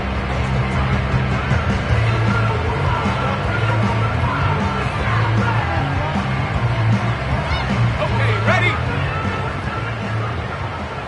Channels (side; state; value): both; identical; correlation 1.00